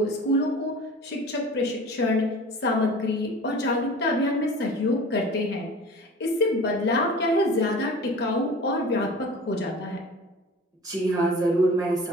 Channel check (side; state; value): both; normal; correlation 0.40